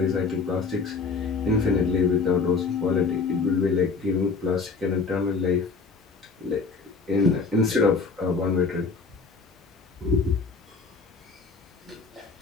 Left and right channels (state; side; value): quieter; right; 4.5 dB